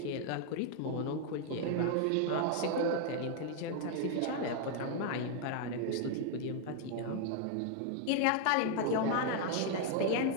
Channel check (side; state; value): both; different; correlation 0.00